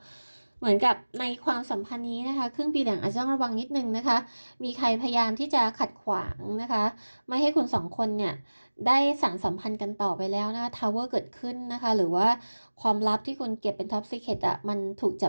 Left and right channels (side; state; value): both; inverted; correlation -1.00